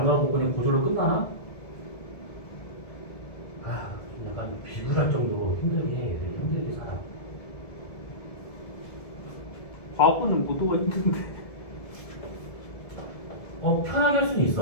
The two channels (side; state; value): right; late; 1.7 ms